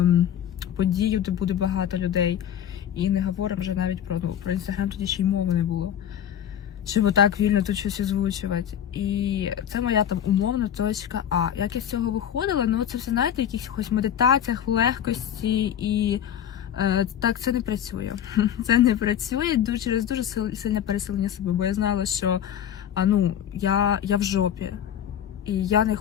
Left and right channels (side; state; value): right; quieter; 9.8 dB